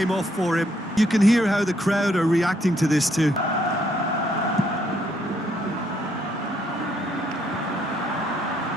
off for him. You can hear how the crowd are reacting to this too.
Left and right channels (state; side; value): normal; both; correlation 0.71